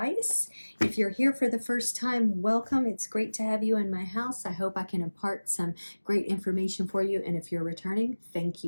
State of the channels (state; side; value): inverted; both; correlation -1.00